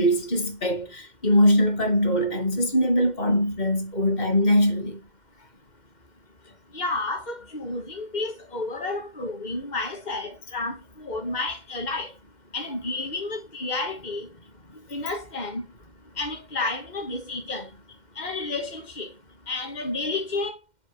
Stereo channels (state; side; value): late; right; 2.1 ms